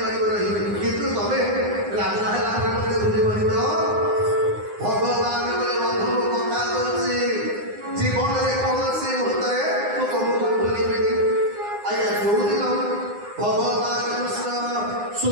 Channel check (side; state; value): left; late; 9.7 ms